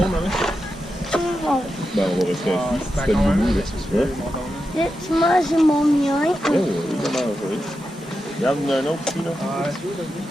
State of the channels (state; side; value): normal; both; correlation 0.89